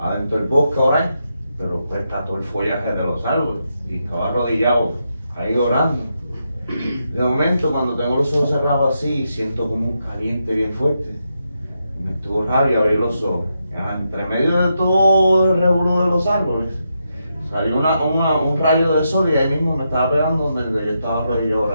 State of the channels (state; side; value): inverted; both; correlation -0.84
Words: del bosque a orar, pero pues está todo el follaje de los árboles, y estaba arrodillado ahí orando. De momento, cuando tengo los ojos cerrados así, siento como un caliente bien fuerte. Me estuvo raro y abrí los ojos. Entre medio de todo el revolú de los árboles, salió un rayo de sol, y ahí mismo me estaba pegando donde yo estaba arrodillado